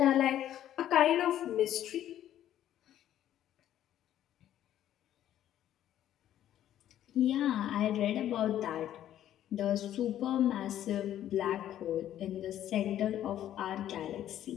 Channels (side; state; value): right; quieter; 11.7 dB